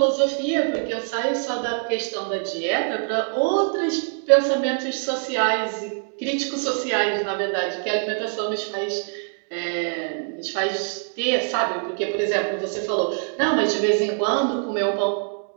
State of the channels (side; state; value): left; silent; 59 dB below the other